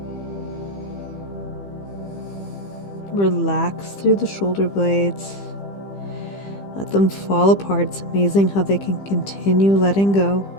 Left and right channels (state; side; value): late; right; 15 ms